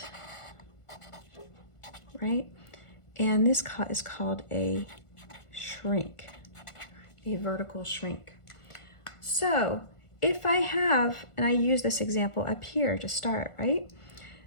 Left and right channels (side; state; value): right; late; 1.5 ms